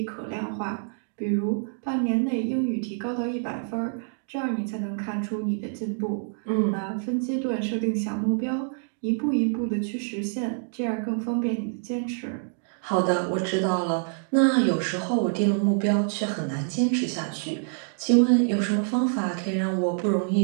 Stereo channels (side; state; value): left; silent; digital silence